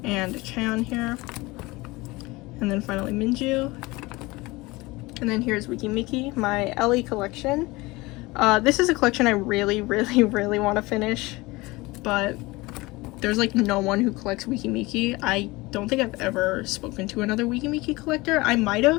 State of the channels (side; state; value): right; quieter; 22.1 dB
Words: and Chan here. And then finally Minju. And then here's meki, my LE collection. This is a collection I really want to finish, but there's like no one who collects meki. I don't think I've ever spoken to another meki collector. I might